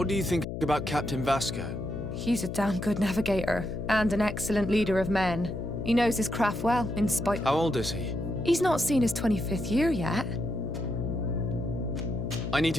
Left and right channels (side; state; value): left; noise; hum, 6 dB below the sound